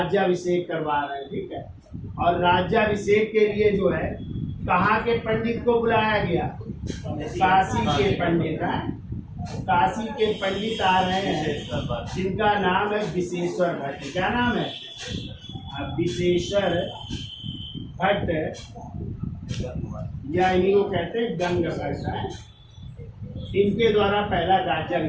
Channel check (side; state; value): both; identical; correlation 1.00